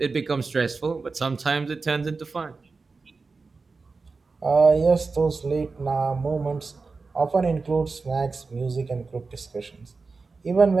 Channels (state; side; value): quieter; left; 4.2 dB